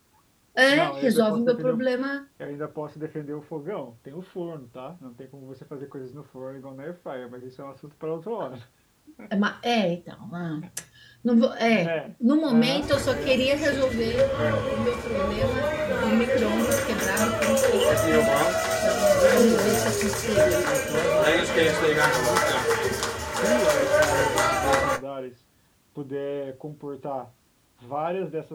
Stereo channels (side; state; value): both; identical; correlation 1.00